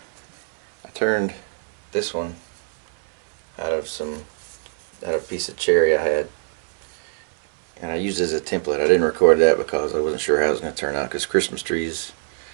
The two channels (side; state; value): left; silent; 63 dB below the other